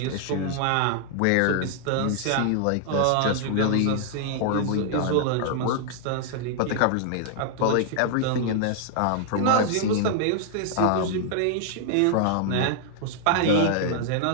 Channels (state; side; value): different; both; correlation -0.01